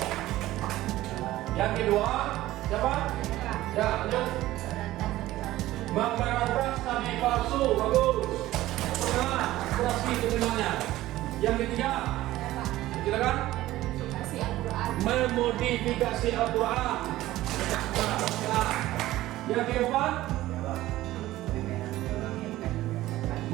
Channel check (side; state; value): left; quieter; 15.9 dB